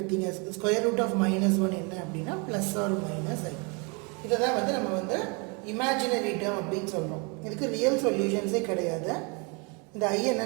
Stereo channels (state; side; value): quieter; left; 32.1 dB